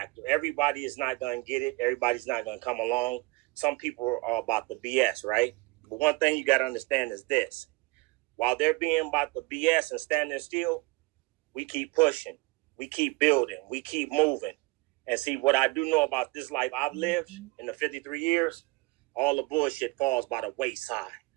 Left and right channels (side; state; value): left; quieter; 24.0 dB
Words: Everybody is not going to get it. Everybody's not going to come along. Some people are about the BS, right? But one thing you got to understand is this. While they're being about the BS and standing still, we keep pushing. We keep building. We keep moving. And see, what I do know about this life I've lived in the 53 years, all the bullshit falls by the wayside.